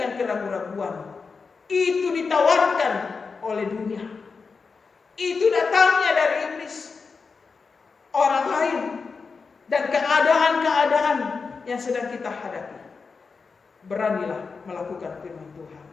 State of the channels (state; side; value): quieter; right; 4.9 dB